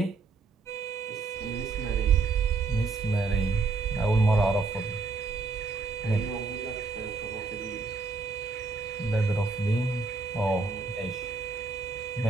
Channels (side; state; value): left; quieter; 4.1 dB